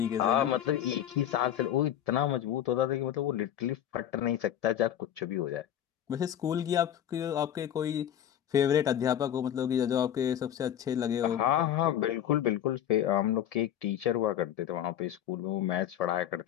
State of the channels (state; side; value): quieter; right; 10.7 dB